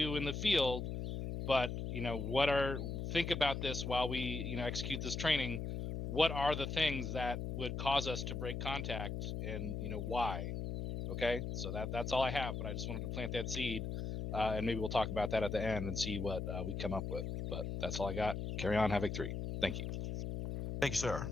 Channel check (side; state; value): left; noise; hum, 3 dB below the sound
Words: in the field, but, think about this while we, execute this training. What are the things that would cause us to break contact, and why? Okay, so that's all I have, but I just wanted to plant that seed, and maybe we'll talk about that at the end and see what we come up with. But that's all I got. Carry on, Havoc 3. Thank you. Thank you, sir.